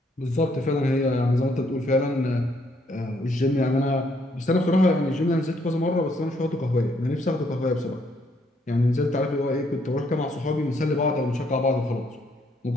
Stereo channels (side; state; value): both; normal; correlation 0.70